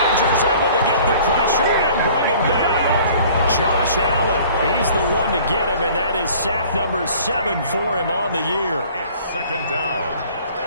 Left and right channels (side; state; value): both; inverted; correlation -0.51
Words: able to get the pressure and bring him down. Josh Allen, he's the one to get him, and that is sack number 7 for him on the year. It's 2nd down.